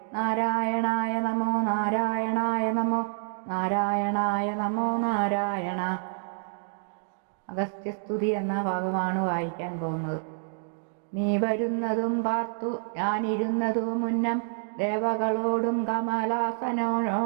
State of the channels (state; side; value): silent; left; digital silence